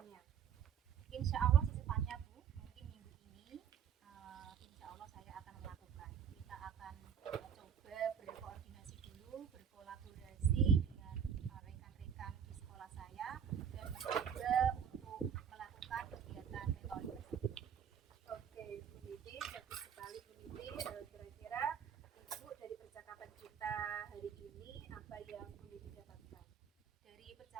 yang Bu Niti dapatkan? Dari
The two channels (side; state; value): left; quieter; 7.8 dB